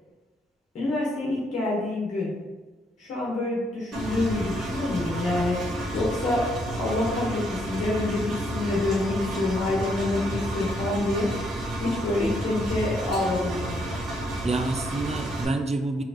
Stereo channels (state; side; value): normal; both; correlation 0.73